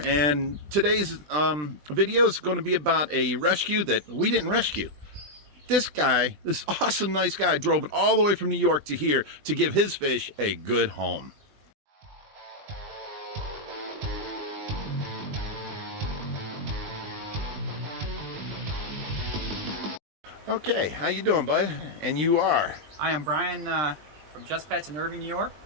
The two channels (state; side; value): late; left; 20 ms